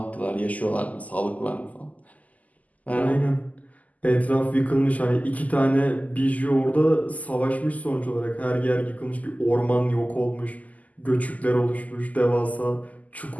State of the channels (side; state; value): right; late; 0.076 ms